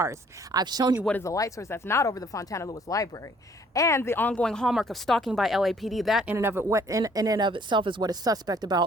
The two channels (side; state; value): both; normal; correlation 0.60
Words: I've shown you what is the light source that's not over the Fontana Lewis Library. And the ongoing hallmark of stalking by LAPD, that in and of itself is what is suspect